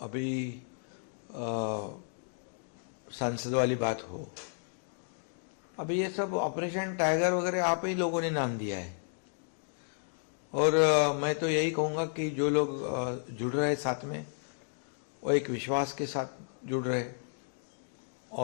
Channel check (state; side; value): silent; right; digital silence